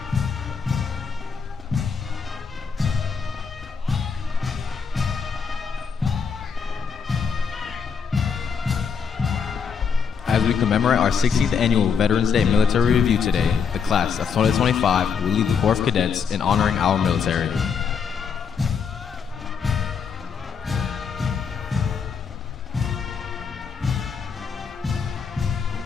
As we commemorate our 16th annual Veterans Day Military Review today, the class of 2025 will lead the Corps of Cadets in honoring our military.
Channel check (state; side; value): quieter; right; 6.3 dB